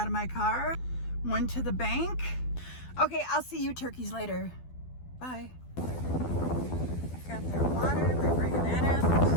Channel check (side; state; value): right; late; 12 ms